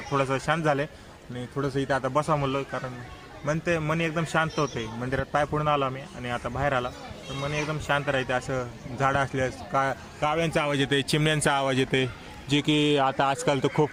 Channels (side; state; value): both; identical; correlation 1.00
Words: थोडंसं शांत झालं आणि थोडंसं इथं आता बसा म्हणलं, कारण मन एकदम शांत होते. मंदिरात पाय पडून आलो आम्ही आणि आता बाहेर आला तर मन एकदम शांत राहते. असं झाडं असल्यास काव्यांचा आवाज येते, चिमण्यांचा आवाज येते, जे की आता आजकाल तर खूप